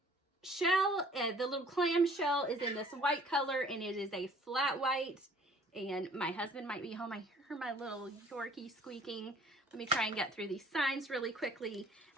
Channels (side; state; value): both; normal; correlation 0.55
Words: shell, the little clam shell is in this white color, and it is a flat white. And my husband might be home. I hear my little Yorkie squeaking. Let me try and get through these signs really quickly.